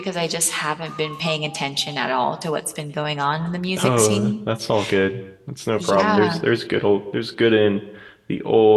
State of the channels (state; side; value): identical; both; correlation 1.00